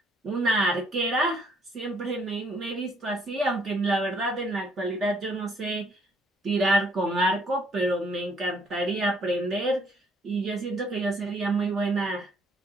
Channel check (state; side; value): normal; both; correlation 0.66